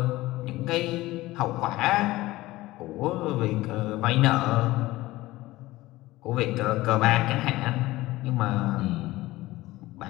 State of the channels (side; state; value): right; quieter; 18.2 dB